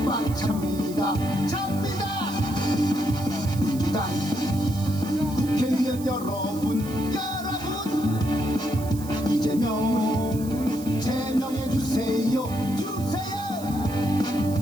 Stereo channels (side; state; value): right; noise; hiss, 16 dB below the sound